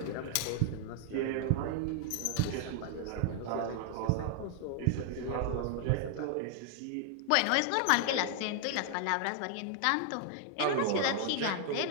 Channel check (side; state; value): both; different; correlation 0.00